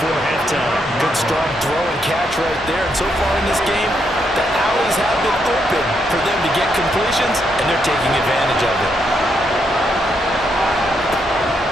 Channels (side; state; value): both; normal; correlation 0.78